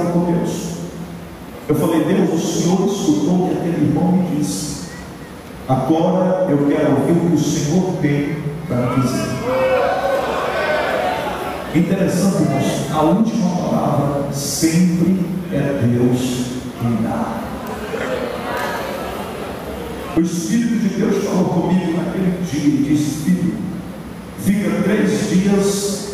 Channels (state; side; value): identical; both; correlation 1.00